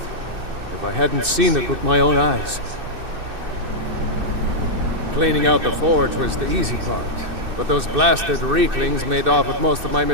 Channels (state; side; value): late; left; 2.6 ms